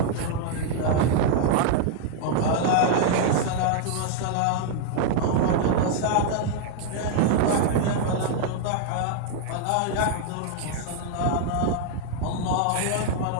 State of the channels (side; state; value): both; different; correlation 0.00